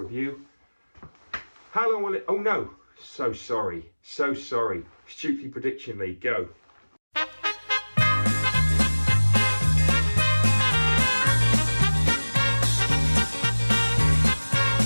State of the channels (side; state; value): both; inverted; correlation -1.00